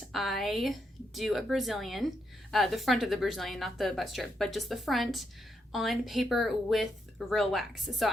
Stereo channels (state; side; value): normal; both; correlation 0.80